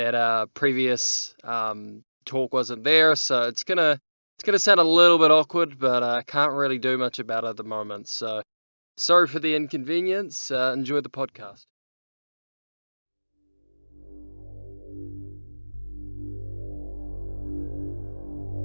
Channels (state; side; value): inverted; both; correlation -1.00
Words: previous talk wasn't there, so it's gonna sound a little bit awkward, but I can't really do much about it at the moment. So sorry for the inconvenience. Enjoy the podcast.